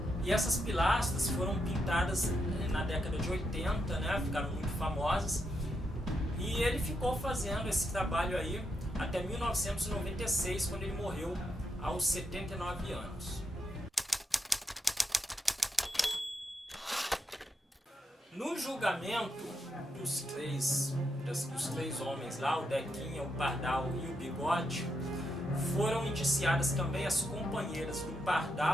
E essas pilastras foram pintadas na década de 80, né? Ficaram muito famosas, e ele ficou fazendo esse trabalho aí até 1996, quando ele morreu aos 79 anos. No julgamento dos três homens lá, o Dequinha, o Pardal e o Bigode, foram indiciadas também as companheiras do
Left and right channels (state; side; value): normal; both; correlation 0.82